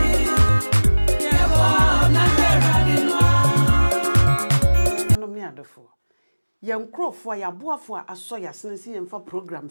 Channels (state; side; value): inverted; both; correlation -1.00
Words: Yankrofo ya boafo aso ya senesi yemfa program